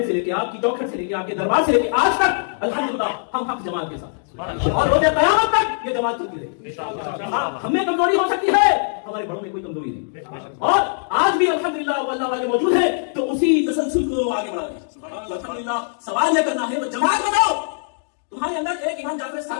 سے لے کے آپ کی چوکھٹ سے لے کے آپ کے دربار سے لے کے آج تک الحمدللہ ہم حق جماعت کے ساتھ اور روز قیامت تک یہ جماعت چلتی رہے. ہم میں کمزوری ہو سکتی ہے, ہمارے بڑوں میں کوئی کمزوری نہیں, اور آج بھی الحمدللہ وہ اللہ والے موجود ہیں تو اسی تسلسل کو آگے بڑھا رہے ہیں. الحمدللہ سوال یہ کرنا ہے تو جماعت بتاؤ, تمہارے اندر ایک امام جعفر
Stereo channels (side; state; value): right; silent; digital silence